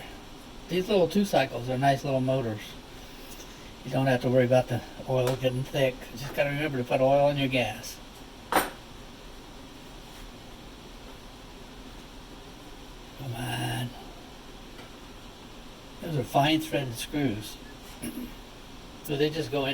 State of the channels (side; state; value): both; identical; correlation 1.00